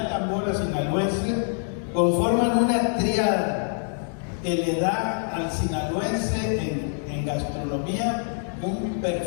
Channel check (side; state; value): right; silent; 61 dB below the other